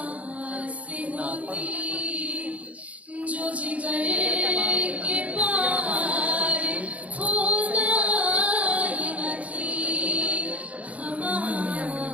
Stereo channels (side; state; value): left; late; 0.067 ms